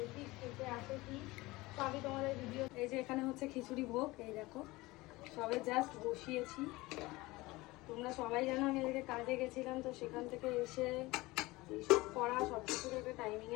খেতে আসে কি, তো আমি তোমাদের ভিডিও। এই যে এখানে হচ্ছে খিচুড়ি ভোগ, এই দেখো সবে জাস্ট বসিয়েছি। তোমরা সবাই জানো আমি এদিকে কাজে গেছিলাম, তো সেখান থেকে এসে এইসব করা সব কিছুর একটা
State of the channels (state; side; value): quieter; right; 20.9 dB